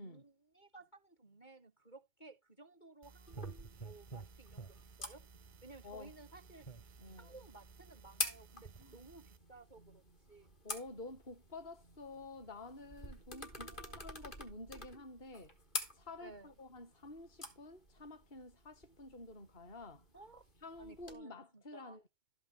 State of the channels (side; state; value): right; late; 2.2 ms